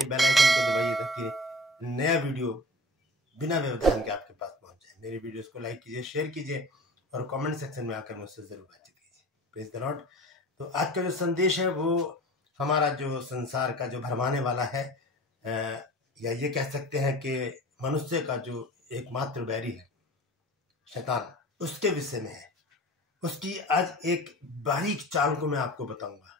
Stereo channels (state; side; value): normal; both; correlation 0.39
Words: बेल आइकन को दबाइए ताकि नया वीडियो बिना व्यवधान के आपके पास पहुंच जाए। मेरे वीडियोस को लाइक कीजिए, शेयर कीजिए और कमेंट सेक्शन में आकर मुझसे जरूर बातचीत कीजिए। Praise the Lord. तो आज का जो संदेश है वो हमारा जो संसार का जो भरमाने वाला है, या ये कह सकते हैं कि मनुष्य का जो एकमात्र बैरी है शैतान, उसके विषय में है। उसकी आज एक बारीक चाल को मैं आपको बताऊंगा।